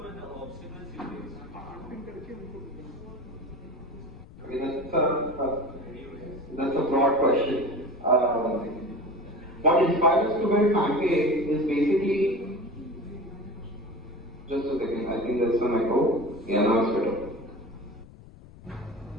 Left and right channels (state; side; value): noise; left; rumble, 19 dB below the sound